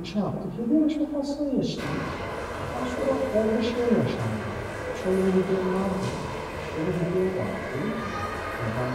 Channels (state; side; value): identical; both; correlation 1.00